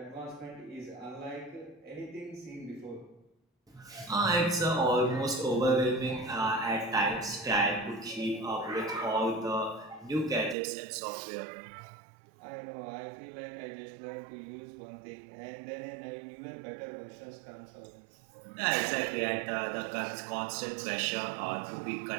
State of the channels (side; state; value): left; drops out; at 10.6 s